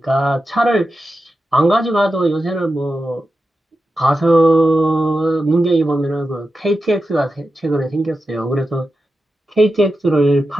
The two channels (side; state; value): both; normal; correlation 0.90